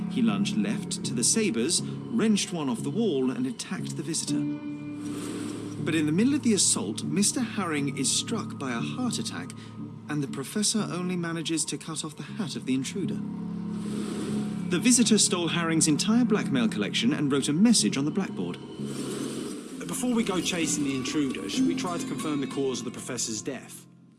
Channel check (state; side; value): identical; both; correlation 1.00